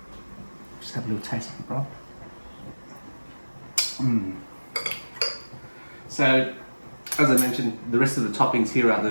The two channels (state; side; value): inverted; both; correlation -1.00